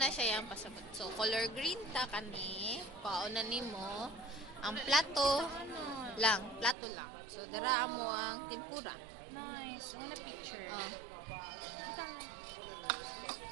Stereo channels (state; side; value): drops out; left; at 6.8 s